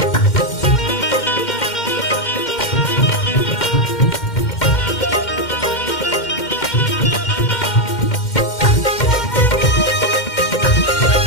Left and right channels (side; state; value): right; late; 2.1 ms